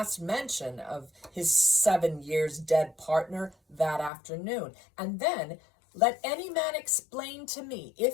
mention of his 7 years dead partner that afternoon. And then let any man explain to me,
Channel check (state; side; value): drops out; right; at 4.1 s